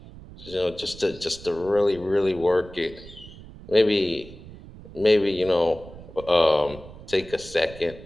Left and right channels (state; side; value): noise; right; rumble, 17 dB below the sound